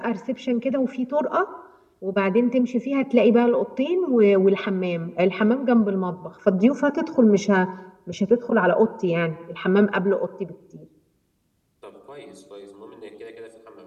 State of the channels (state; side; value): identical; both; correlation 1.00